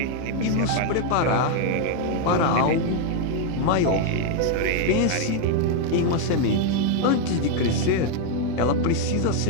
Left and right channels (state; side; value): different; both; correlation 0.00